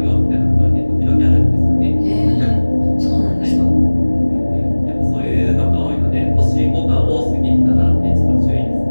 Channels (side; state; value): both; inverted; correlation -1.00